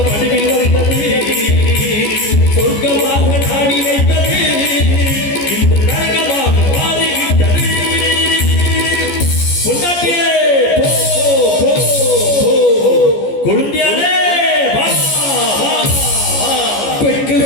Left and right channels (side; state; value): right; late; 14 ms